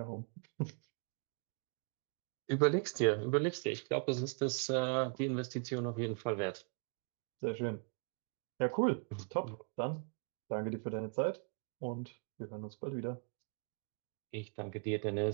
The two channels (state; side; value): quieter; left; 38.6 dB